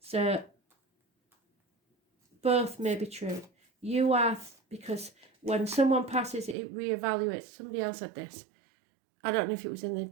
So both may be true. You are, because when someone passes, it reevaluates. Somebody else had this. I don't know if it was in the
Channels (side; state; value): left; drops out; at 6.6 s